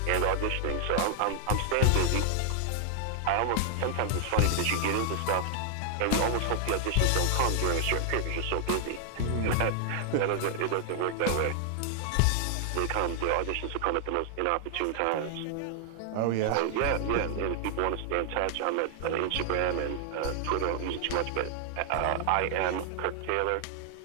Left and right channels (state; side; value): different; both; correlation 0.00